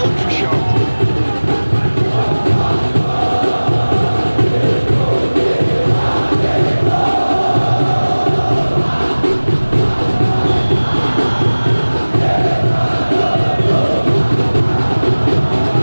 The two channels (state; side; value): inverted; both; correlation -1.00